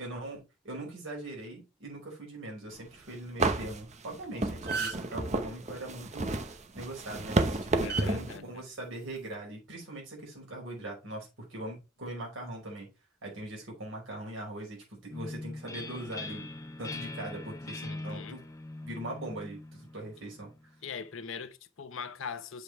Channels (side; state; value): both; normal; correlation 0.42